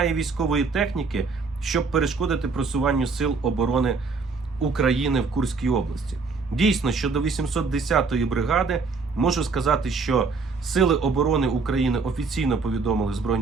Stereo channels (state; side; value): quieter; left; 4.4 dB